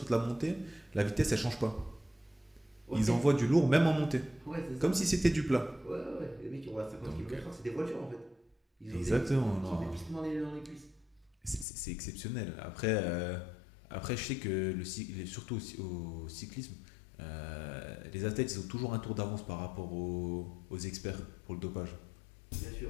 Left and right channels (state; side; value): drops out; right; at 11.7 s